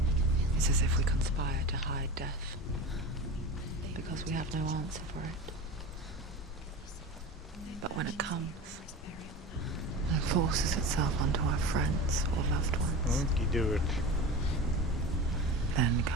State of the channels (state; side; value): normal; both; correlation 0.30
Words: It's as if we conspire to hide death, because we have no answer for it. But when it comes, and forces itself onto our friends or loved ones, then